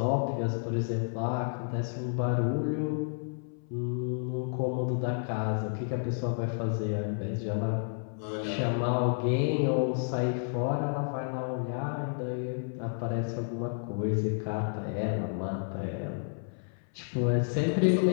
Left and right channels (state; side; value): silent; right; 57 dB below the other